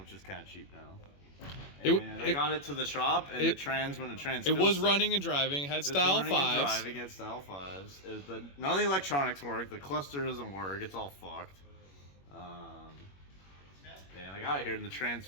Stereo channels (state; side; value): late; right; 21 ms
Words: is kind of cheap now. And I got it to the shop, and the trans went to trans. It was running and driving. It had style 5s. Driving, had style 5s. None of the electronics work. The cluster doesn't work. It's all fucked. And I got it here, and the trans